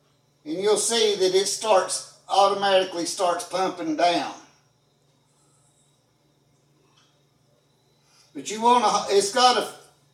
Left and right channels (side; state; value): both; identical; correlation 1.00